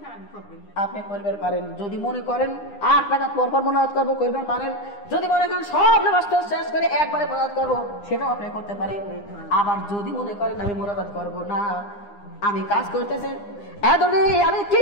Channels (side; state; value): right; late; 9.8 ms